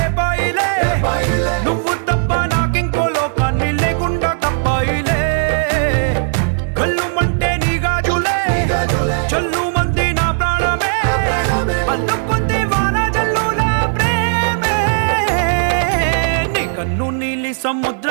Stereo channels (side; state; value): left; silent; 56 dB below the other